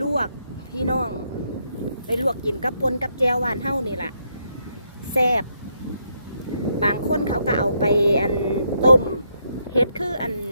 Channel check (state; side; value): inverted; both; correlation -0.76